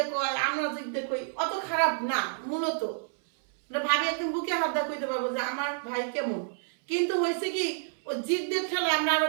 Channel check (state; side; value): silent; left; 59 dB below the other